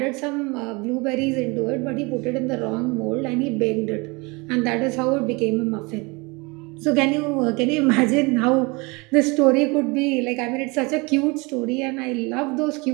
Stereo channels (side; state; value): left; quieter; 27.1 dB